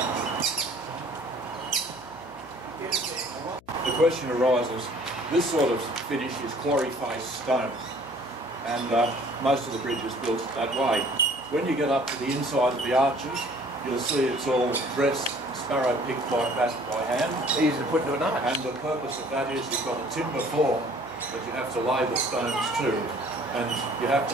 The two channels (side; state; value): left; noise; hum, 26 dB below the sound